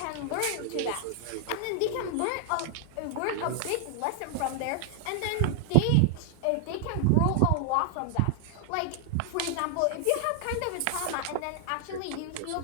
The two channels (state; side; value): different; both; correlation 0.00